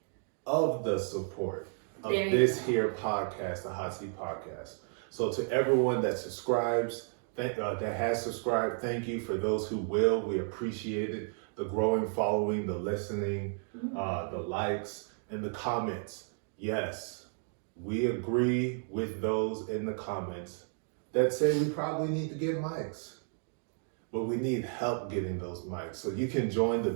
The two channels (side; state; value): left; silent; 56 dB below the other